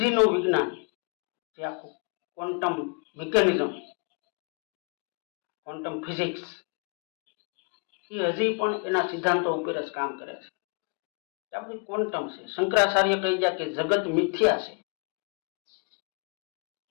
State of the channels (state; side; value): quieter; right; 36.4 dB